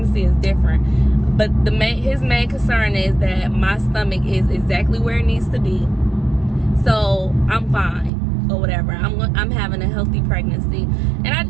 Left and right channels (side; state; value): left; drops out; at 8.1 s